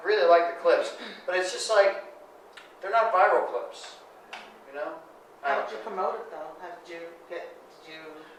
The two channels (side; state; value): both; identical; correlation 1.00